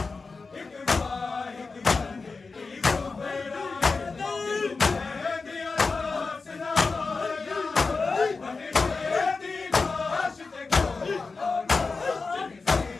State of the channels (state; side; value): quieter; right; 4.2 dB